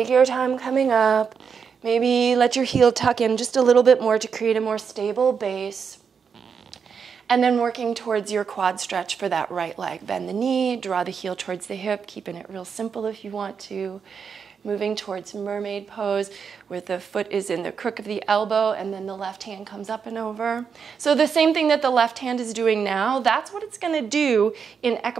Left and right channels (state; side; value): quieter; left; 6.4 dB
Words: your time coming up. Maybe let your heel tuck in just a little bit more to create a more stable base. And then working towards your quad stretch for that right leg. Bend the knee, draw the heel towards the hip, keeping it real simple if you want to. Moving towards mermaid pose, where the foot is in the crook of the elbow and then the left hand comes up and over. So the same thing that the left hand is doing now, that's what it's gonna do in